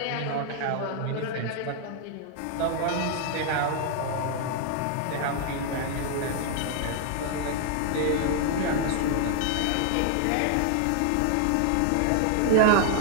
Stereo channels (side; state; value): both; different; correlation 0.00